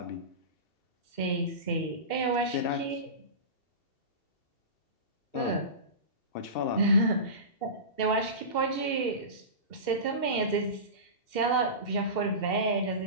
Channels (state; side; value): late; right; 2.7 ms